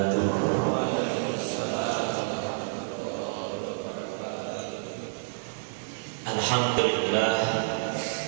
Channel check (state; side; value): silent; left; digital silence